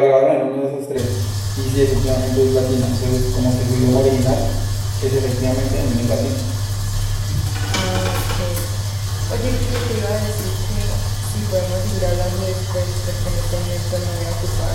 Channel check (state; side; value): identical; both; correlation 1.00